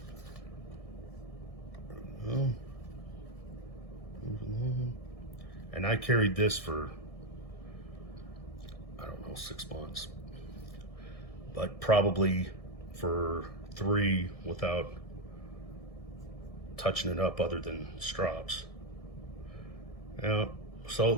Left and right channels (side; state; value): right; late; 1.6 ms